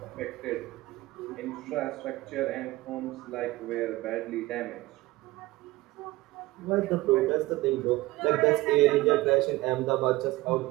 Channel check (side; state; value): left; quieter; 18.8 dB